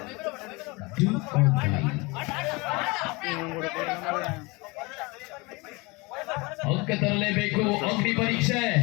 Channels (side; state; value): right; quieter; 25.8 dB